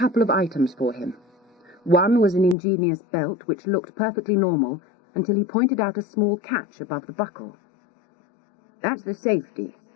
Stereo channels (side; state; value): right; drops out; at 2.6 s